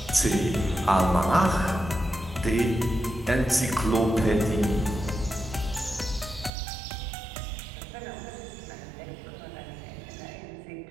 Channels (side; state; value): left; drops out; at 6.5 s